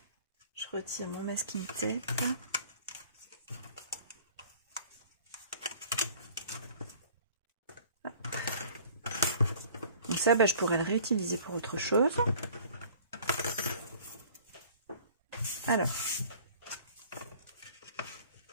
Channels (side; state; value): both; inverted; correlation -0.50